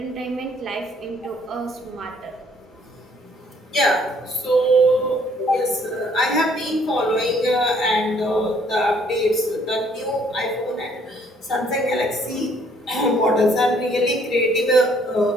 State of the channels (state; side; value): normal; both; correlation 0.63